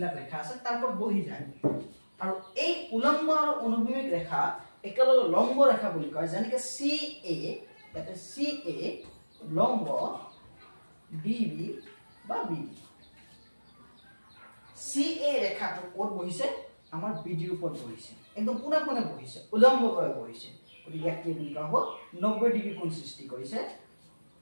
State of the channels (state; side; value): inverted; both; correlation -1.00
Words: ৰেখা আছে তাৰ ওপৰত বহি যায় আৰু এই উলম্ব আৰু অনুভূমিক ৰেখা একেলগে লম্ব ৰেখা বুলি কয় যেনেকৈ CA এটা CA লম্ব BB বা BD CA ৰেখাটো ক'ত বহিছে আমাৰ BD ৰ ওপৰত বহিছে একদম পুনে পুনে বহিছে উলম্বভাৱে বহিছে গতিকে ইয়াক কি বুলি কোৱা হ'ব 90 ডিগ্ৰী কোণ সৃষ্টি কৰিছে